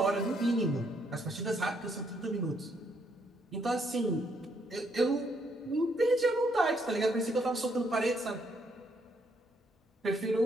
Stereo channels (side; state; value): both; normal; correlation 0.72